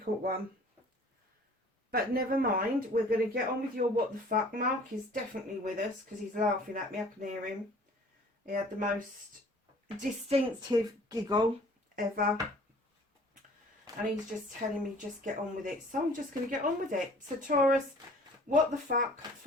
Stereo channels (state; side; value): normal; both; correlation 0.51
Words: one, but never mind, we're going to get on with your what the fuck. Mark is definitely with us because he's laughing at me. I can hear him. He had the most distinctive giggle ever, and he's just telling me just get on with it, so I'm just going to get on with it. So Taurus, what the fuck